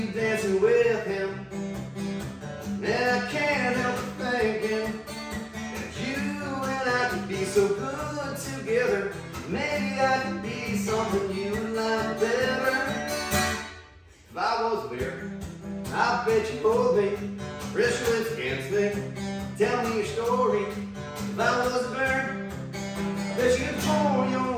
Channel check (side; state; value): both; identical; correlation 1.00